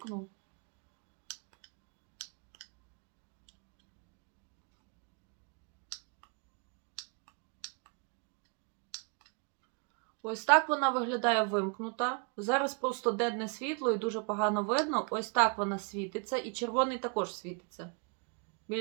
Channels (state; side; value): quieter; left; 36.8 dB